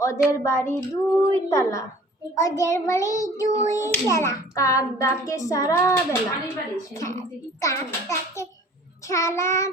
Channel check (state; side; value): normal; both; correlation 0.49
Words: ওদের বাড়ি 2 তালা, ওদের বাড়ি 2 তালা, কাক ডাকে সারা বেলা, কাক ডাকে সারা